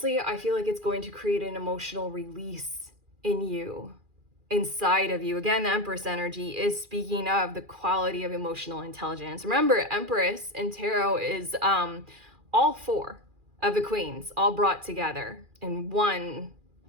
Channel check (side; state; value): left; late; 2.4 ms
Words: I feel like it's going to create an emotional release in you, inside of you. Again, the Empress energy is speaking of the quality of emotional intelligence. Remember, Empress in tarot is all four of the queens all brought together in one